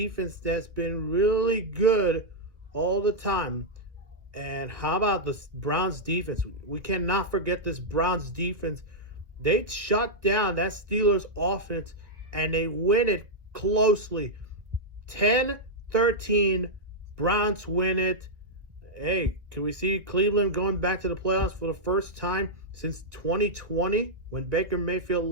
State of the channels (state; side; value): late; left; 1.6 ms